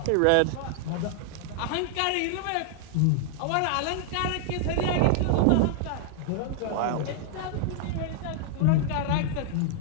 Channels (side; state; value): both; different; correlation -0.01